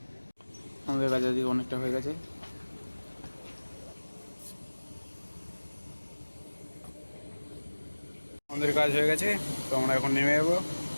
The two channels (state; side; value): inverted; both; correlation -1.00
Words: আমাদের কাজ আজকে অনেকটা হয়ে গেছে। আমাদের কাজ হয়ে গেছে, তো আমরা এখন নেমে যাবো।